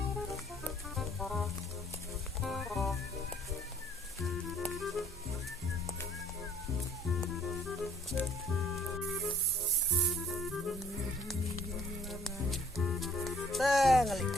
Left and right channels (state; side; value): normal; both; correlation 0.59